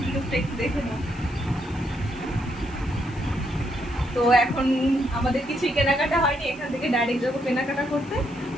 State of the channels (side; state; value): left; noise; hiss, 26 dB below the sound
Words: লুকটা একটু দেখে নাও। তো এখন আমাদের কিছুই কেনাকাটা হয়নি, এখান থেকে ডাইরেক্ট যাবো কেনাকাটা করতে।